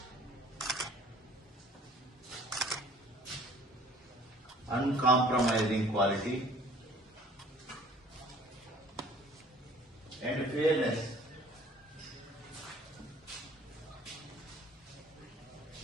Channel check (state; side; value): normal; both; correlation 0.53